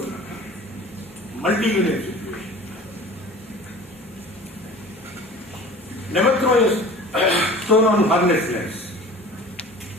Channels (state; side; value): normal; both; correlation 0.42